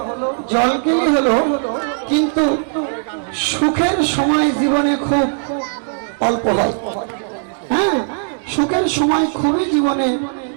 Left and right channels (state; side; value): silent; left; digital silence